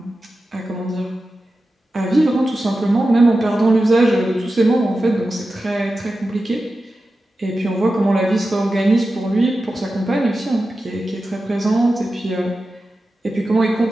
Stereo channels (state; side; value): normal; both; correlation 0.93